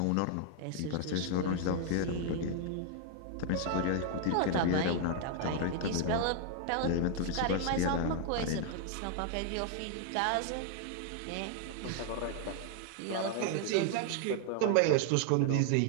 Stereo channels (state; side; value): different; both; correlation 0.00